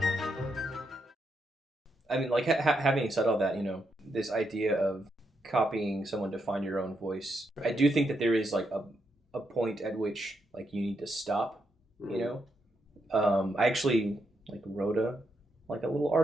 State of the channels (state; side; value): normal; both; correlation 0.81